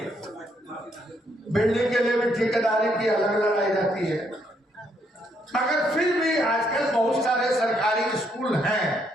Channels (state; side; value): normal; both; correlation 0.73